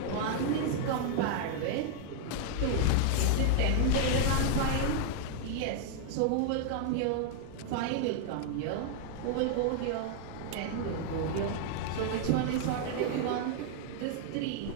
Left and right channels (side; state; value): both; different; correlation 0.00